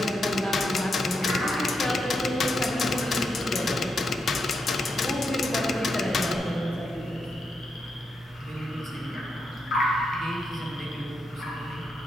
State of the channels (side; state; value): both; normal; correlation 0.83